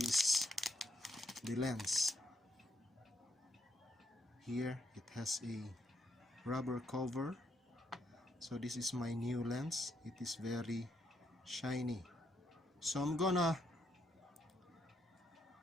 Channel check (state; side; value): normal; both; correlation 0.77